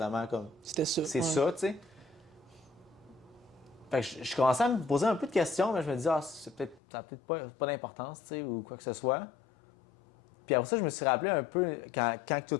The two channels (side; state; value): right; drops out; at 6.8 s